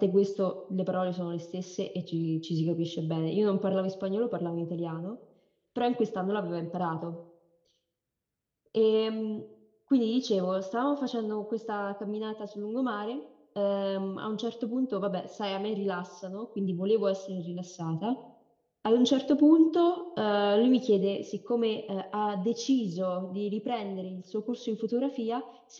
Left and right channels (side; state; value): both; identical; correlation 1.00